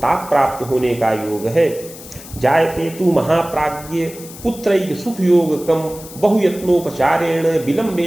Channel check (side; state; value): left; noise; hiss, 16 dB below the sound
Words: ताप प्राप्त होने का योग है। जायते तु महाप्राज्ञ पुत्रैक सुख योगकम बहुयत्नोपचारेण